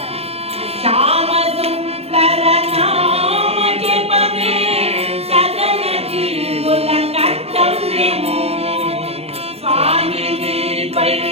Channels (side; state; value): left; late; 0.29 ms